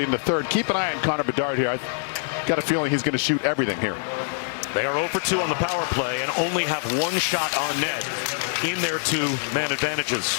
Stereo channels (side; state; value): right; silent; digital silence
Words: in the third. Keep an eye on Connor Bedard here. I've got a feeling he's going to shoot everything here. They are 0 for 2 on the power play and only have 1 shot on net in their 2-man advantages.